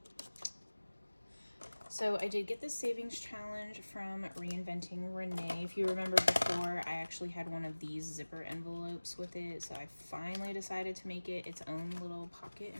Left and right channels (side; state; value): both; inverted; correlation -1.00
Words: So I did get the savings challenge from Reinventing Renee. If you remember before, I actually had one of these zipper envelopes with it. So I finally decided to make it its own little pocket